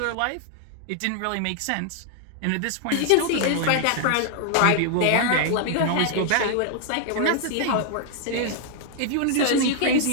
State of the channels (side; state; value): both; different; correlation 0.00